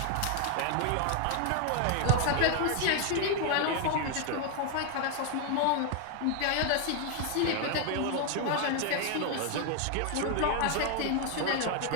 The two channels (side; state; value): both; different; correlation 0.01